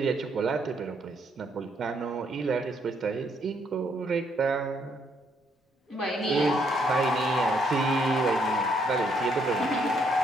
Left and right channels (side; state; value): both; normal; correlation 0.72